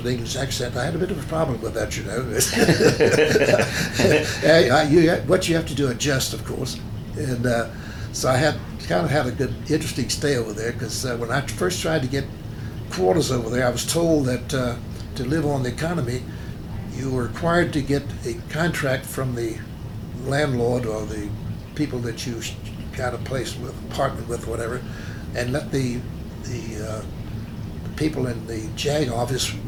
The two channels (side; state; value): both; identical; correlation 1.00